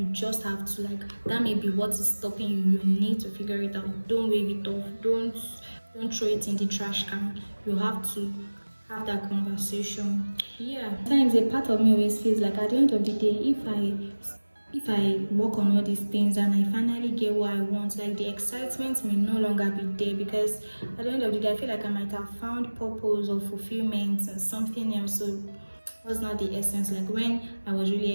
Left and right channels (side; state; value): both; inverted; correlation -1.00